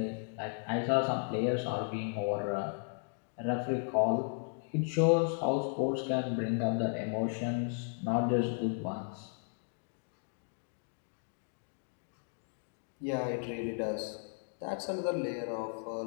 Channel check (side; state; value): right; silent; 54 dB below the other